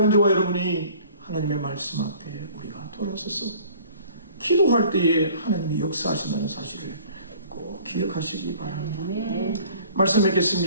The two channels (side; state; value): both; inverted; correlation -0.51